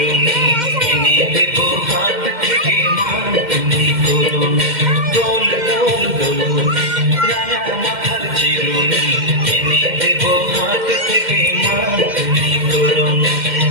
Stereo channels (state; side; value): late; left; 2.1 ms